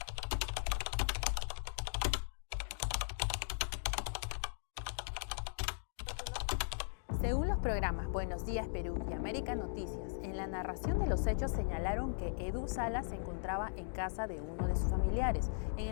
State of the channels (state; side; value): silent; right; digital silence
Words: Según los programas Buenos Días Perú y América Noticias, en la narración de los hechos señalaron que Edu Salas se encontraba en casa de uno de sus familiares, en